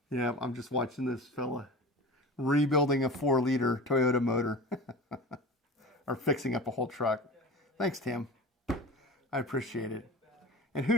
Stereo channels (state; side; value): normal; both; correlation 0.34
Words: Yeah, I'm just watching this fella rebuilding a 4-liter Toyota motor or fixing up a whole truck. Thanks, Tim. I appreciate it. And who